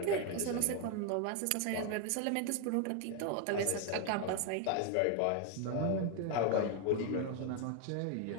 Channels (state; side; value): different; both; correlation 0.01